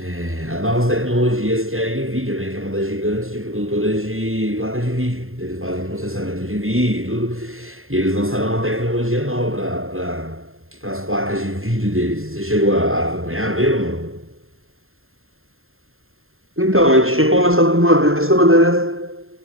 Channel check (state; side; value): late; left; 0.61 ms